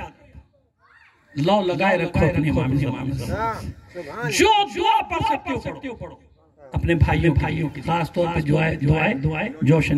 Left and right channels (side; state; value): both; identical; correlation 1.00